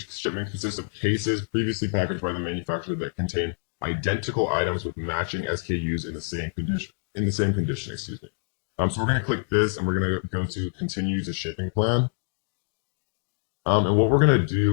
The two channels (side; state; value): right; silent; digital silence